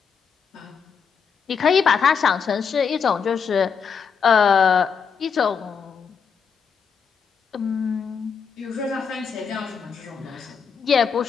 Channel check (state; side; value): quieter; right; 6.4 dB